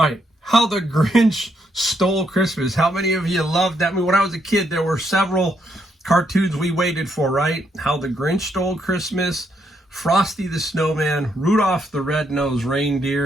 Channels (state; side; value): normal; both; correlation 0.76